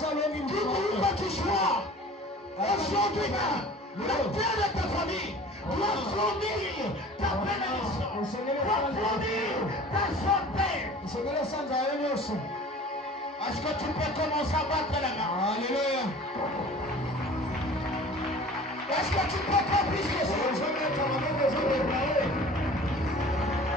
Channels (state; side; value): normal; both; correlation 0.44